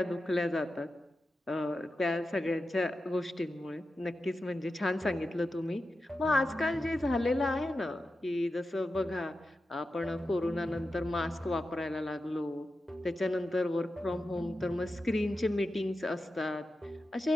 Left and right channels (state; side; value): normal; both; correlation 0.91